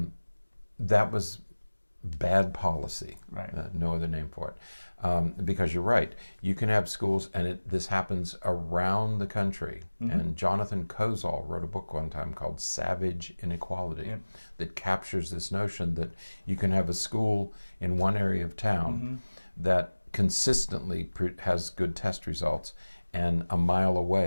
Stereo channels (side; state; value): both; inverted; correlation -1.00